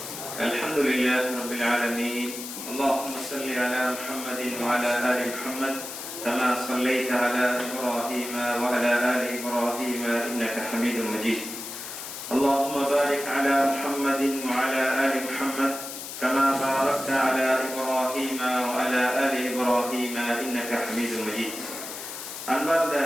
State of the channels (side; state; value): left; noise; hiss, 9 dB below the sound